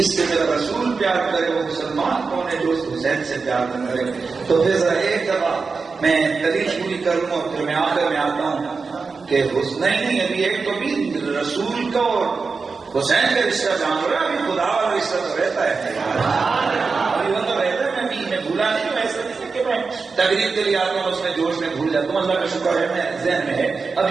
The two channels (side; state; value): left; quieter; 4.6 dB